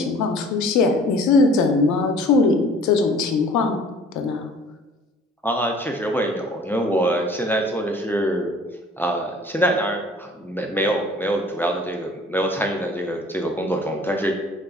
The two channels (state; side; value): normal; both; correlation 0.50